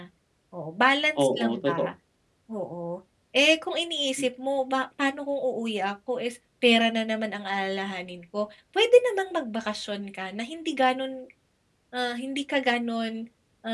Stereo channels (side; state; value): both; identical; correlation 1.00